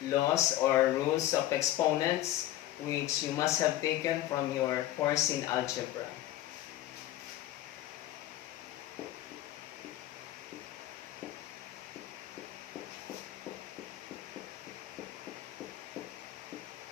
laws or rules of exponents, which you must have taken from your course in algebra.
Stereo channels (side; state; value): right; quieter; 14.1 dB